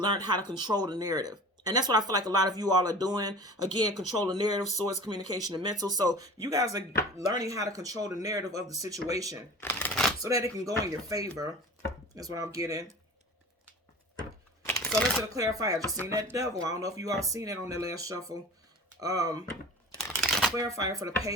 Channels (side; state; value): both; normal; correlation 0.39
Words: how to control the narrative. And that's what I feel like a lot of you all are doing. Again, control the narrative, swords, communication, and mental. So you guys are learning how to control the narrative of the situation so that it can go in your favor. That's what I'm getting. So let's clarify. I just seen that devil. I don't know if you all seen it on that last shuffle. Clarifier for the